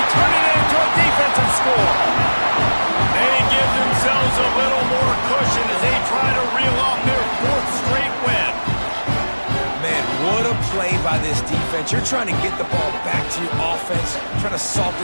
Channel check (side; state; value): both; inverted; correlation -1.00